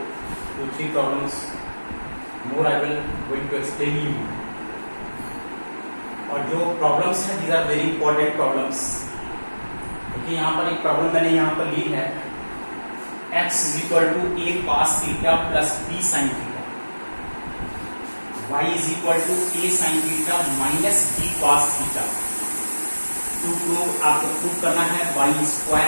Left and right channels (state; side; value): inverted; both; correlation -1.00